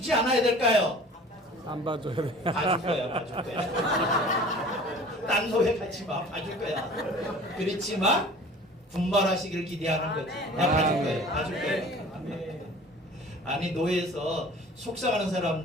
않아야 될까요? 안 봐줘야 돼. 봐줄 거야, 봐줄 거야. 딴 노예 같이 마, 봐줄 거야. 그렇지만 분발하시기를 기대하는 거지. 나 봐줄 거야, 봐줄 거야. 아니 노예에서 속삭이는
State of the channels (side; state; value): both; normal; correlation 0.45